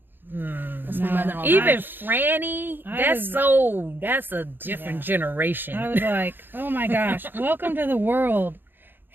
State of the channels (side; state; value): left; late; 0.096 ms